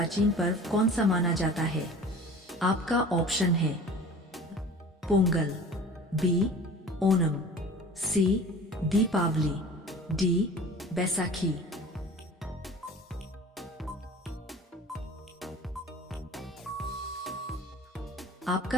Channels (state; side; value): normal; both; correlation 0.42